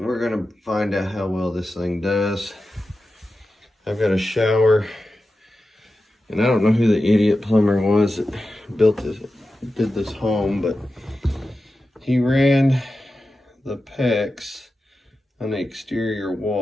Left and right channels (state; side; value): normal; both; correlation 0.92